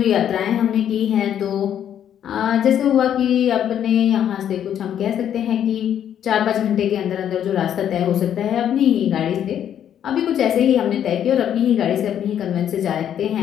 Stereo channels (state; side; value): quieter; right; 9.8 dB